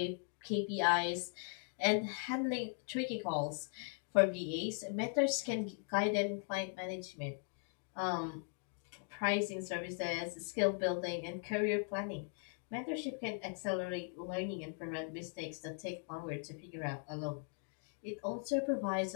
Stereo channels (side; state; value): right; silent; 52 dB below the other